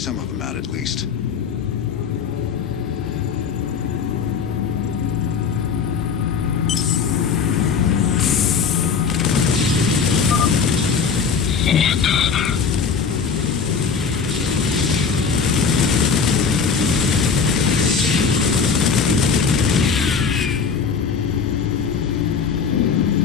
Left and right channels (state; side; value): quieter; right; 5.9 dB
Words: of them out at least.